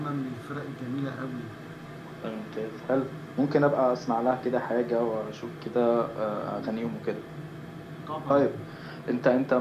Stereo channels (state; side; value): identical; both; correlation 1.00